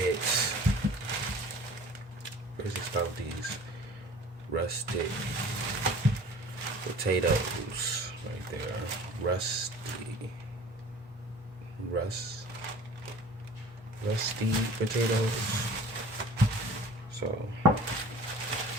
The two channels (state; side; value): normal; both; correlation 0.46